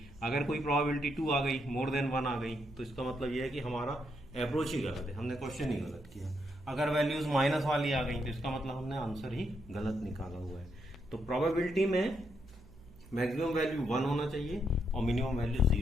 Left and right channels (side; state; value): right; noise; hum, 22 dB below the sound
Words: अगर कोई प्रोबेबिलिटी 2 आ गई, मोर देन 1 आ गई, तो इसका मतलब ये है कि हमारा अप्रोच ही गलत है, हमने क्वेश्चन ही गलत किया। अगर वैल्यूज माइनस वाली आ गई तो इसका मतलब हमने आंसर ही गलत निकाला हुआ है। तो प्रोबेबिलिटी में मैक्सिमम वैल्यू 1 होना चाहिए और मिनिमम वैल्यू